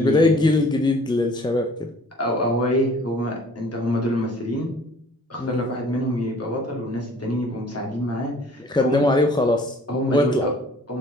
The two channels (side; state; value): both; normal; correlation 0.53